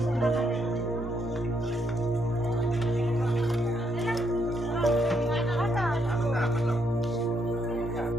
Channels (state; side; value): normal; both; correlation 0.76